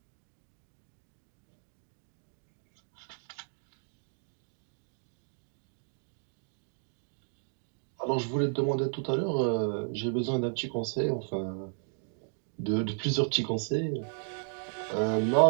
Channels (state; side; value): silent; left; 55 dB below the other